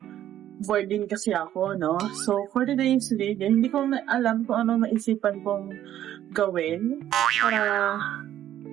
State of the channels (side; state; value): left; quieter; 11.8 dB